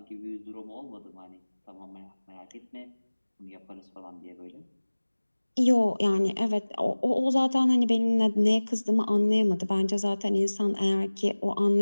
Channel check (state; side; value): inverted; both; correlation -1.00